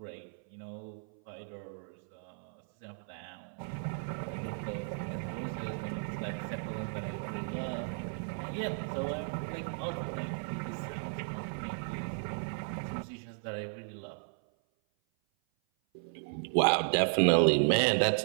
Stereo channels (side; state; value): left; silent; 55 dB below the other